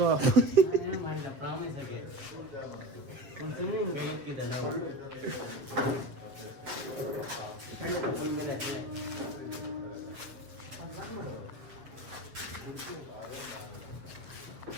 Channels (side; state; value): left; late; 7.7 ms